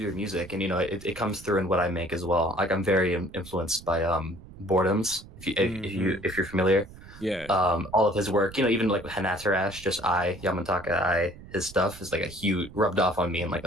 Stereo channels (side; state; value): right; noise; rumble, 18 dB below the sound